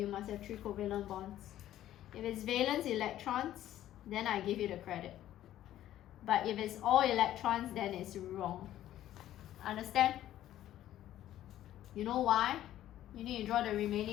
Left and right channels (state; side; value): quieter; right; 12.8 dB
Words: must have 3 covalent bonds. If it's valence electrons, then I give you the credit. But if it's all electrons, then it's wrong. Understand? You know why? You need to draw the